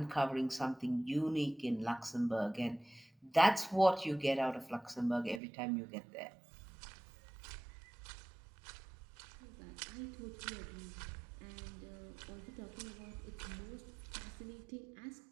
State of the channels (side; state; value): left; drops out; at 5.4 s